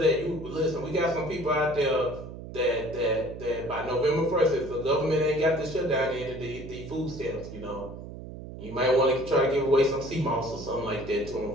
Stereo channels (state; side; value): noise; right; hum, 12 dB below the sound